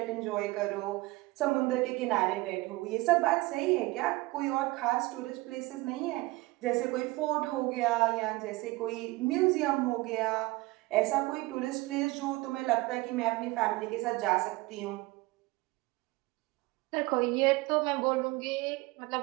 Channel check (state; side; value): quieter; left; 21.5 dB